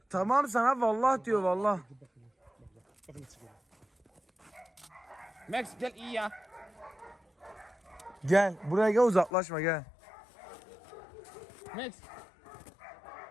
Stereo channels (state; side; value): drops out; right; at 9.3 s